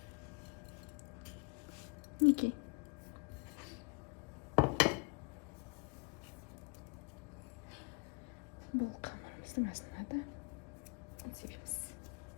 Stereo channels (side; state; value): right; quieter; 29.7 dB